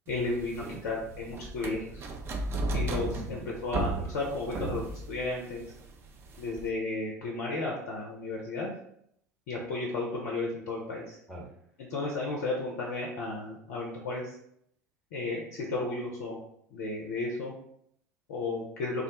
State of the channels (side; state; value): both; normal; correlation 0.34